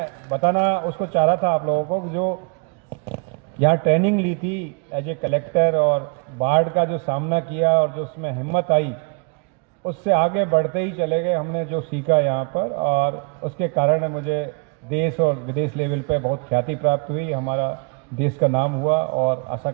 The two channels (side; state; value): left; quieter; 33.4 dB